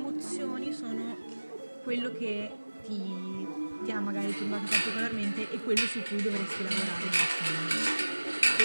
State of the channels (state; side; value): inverted; both; correlation -1.00